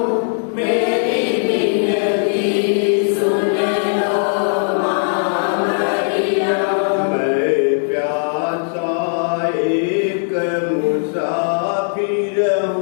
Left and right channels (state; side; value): silent; right; digital silence